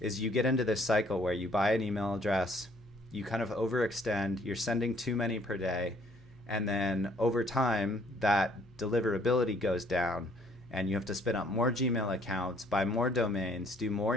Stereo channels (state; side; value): noise; left; hum, 27 dB below the sound